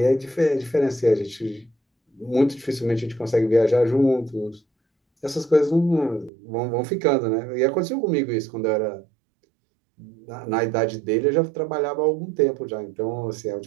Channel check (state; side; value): drops out; left; at 6.3 s